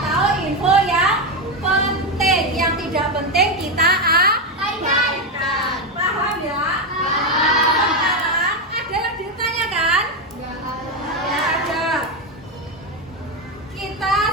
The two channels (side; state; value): both; normal; correlation 0.09